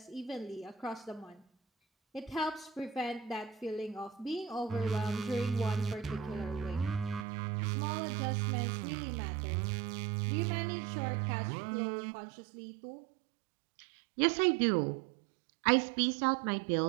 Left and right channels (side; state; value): left; drops out; at 7.2 s